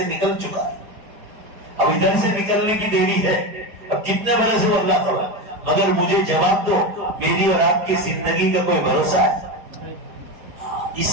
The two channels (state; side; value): late; left; 4.9 ms